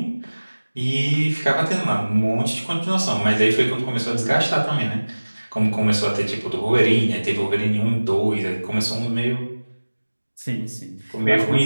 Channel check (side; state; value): both; inverted; correlation -1.00